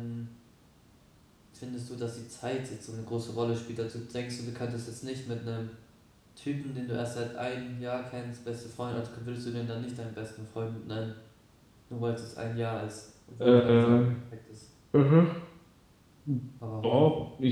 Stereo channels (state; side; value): identical; both; correlation 1.00